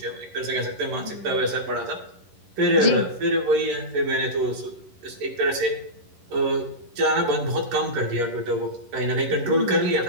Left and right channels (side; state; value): left; late; 11 ms